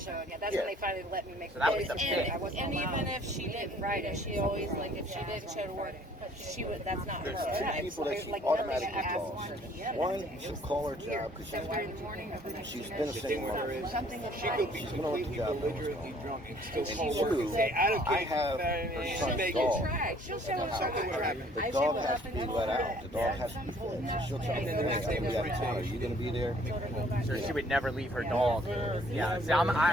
Yeah, that's Yeah. when they finally let me make So that was the And, pick. I wasn't and allowed. even if she didn't, Friday, she always like if she didn't show to work, she would. That's not her. There's two Yeah, people that she like automatically nothing at calls. 1 p.m. One, she'll call her job because 7:30 in the morning. she's been a single mother. Is, Something with she could be She's gonna let the completely job know what's belligerently going on. drunk and still And call work and two, say, I don't care. I have her son's dog. She'll show up. Something would happen. The dog has to be let out. The dog has to be fed. So she'll tell me, And then the next day hey, was we got a town. Are you going to be there? So she would never leave her dog. Yeah, see,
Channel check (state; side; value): normal; both; correlation 0.58